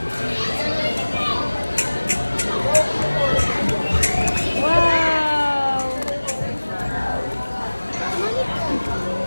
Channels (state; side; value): inverted; both; correlation -1.00